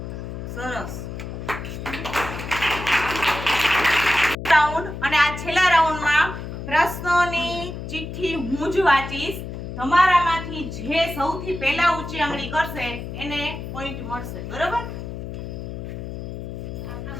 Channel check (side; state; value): left; noise; hum, 8 dB below the sound